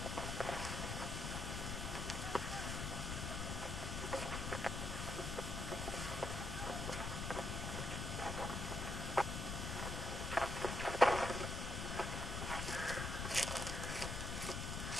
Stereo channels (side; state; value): left; noise; rumble, 3 dB below the sound